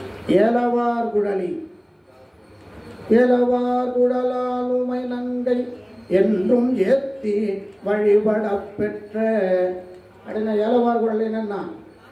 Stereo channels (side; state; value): both; identical; correlation 1.00